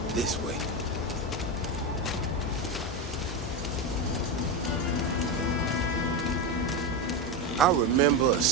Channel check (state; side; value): normal; both; correlation 0.14